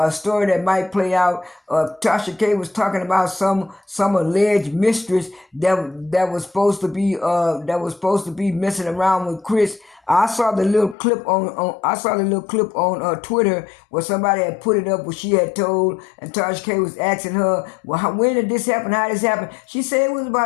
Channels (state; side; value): drops out; right; at 11.0 s